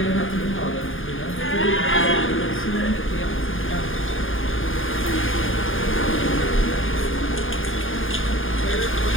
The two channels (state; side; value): late; right; 0.59 ms